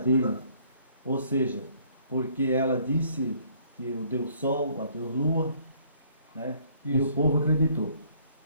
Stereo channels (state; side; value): inverted; both; correlation -0.62